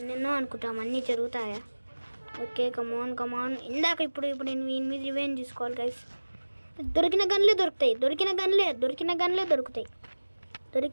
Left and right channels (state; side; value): inverted; both; correlation -1.00